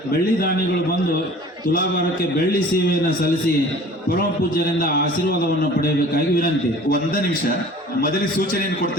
ಬೆಳ್ಳಿ ದಾನಿಗಳು ಬಂದು ತುಲಾಭಾರಕ್ಕೆ ಬೆಳ್ಳಿ ಸೇವೆಯನ್ನು ಸಲ್ಲಿಸಿ ಪರಮ ಪೂಜ್ಯರಿಂದ ಆಶೀರ್ವಾದವನ್ನು ಪಡೆಯಬೇಕಾಗಿ ವಿನಂತಿ. ಒಂದೇ ನಿಮಿಷ, ಮೊದಲಿಗೆ ಸೂಚನೆಯನ್ನು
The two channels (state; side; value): normal; both; correlation 0.46